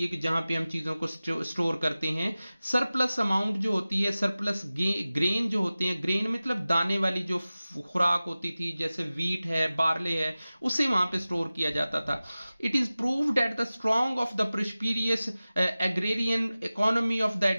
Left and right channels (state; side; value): inverted; both; correlation -0.97